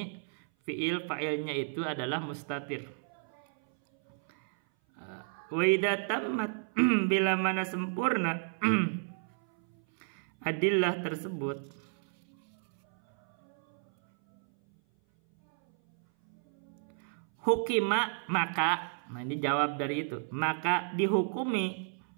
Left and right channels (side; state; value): left; silent; 56 dB below the other